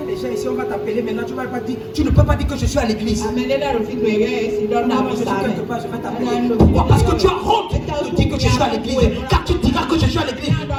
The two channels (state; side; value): identical; both; correlation 1.00